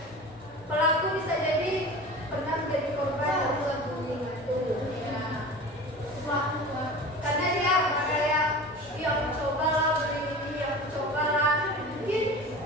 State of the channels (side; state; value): both; normal; correlation 0.35